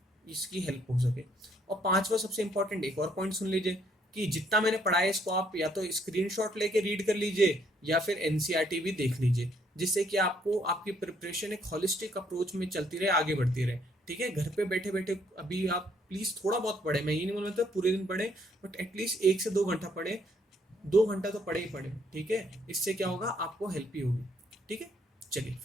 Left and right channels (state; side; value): normal; both; correlation 0.68